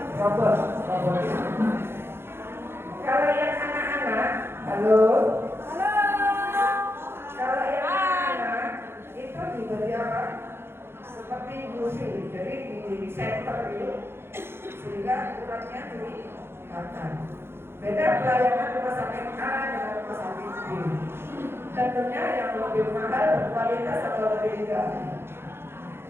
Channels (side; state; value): left; late; 0.11 ms